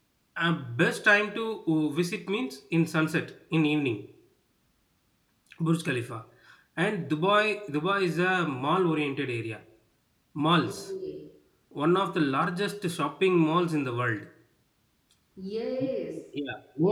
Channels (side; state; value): both; identical; correlation 1.00